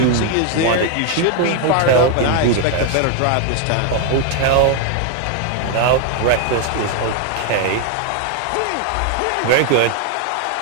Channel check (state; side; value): different; both; correlation 0.00